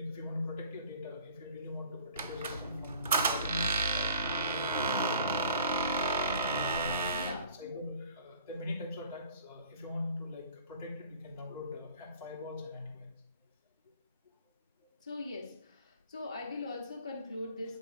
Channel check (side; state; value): both; inverted; correlation -0.51